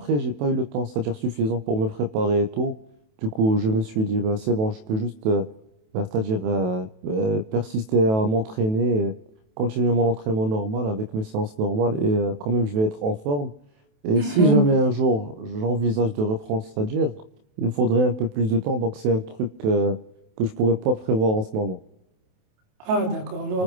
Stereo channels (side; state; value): left; late; 28 ms